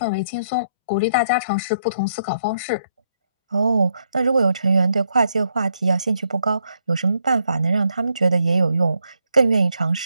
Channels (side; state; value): both; inverted; correlation -0.75